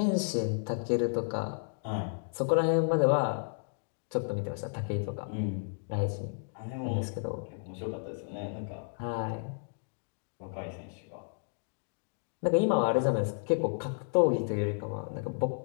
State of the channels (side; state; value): right; silent; digital silence